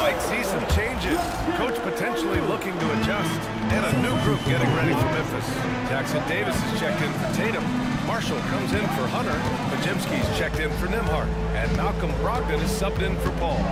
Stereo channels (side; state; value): both; identical; correlation 1.00